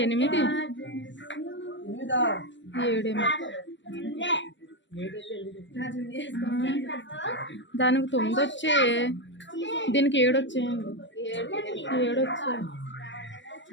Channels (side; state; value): right; late; 0.53 ms